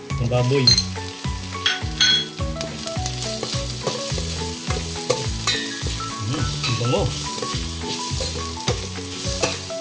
ang baboy. Ang bango.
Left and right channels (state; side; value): identical; both; correlation 1.00